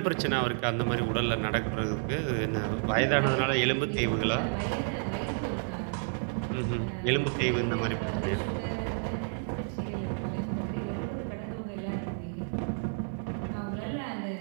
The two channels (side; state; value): left; silent; 57 dB below the other